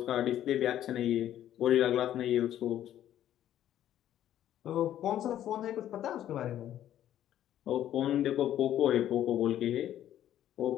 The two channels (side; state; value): right; quieter; 11.7 dB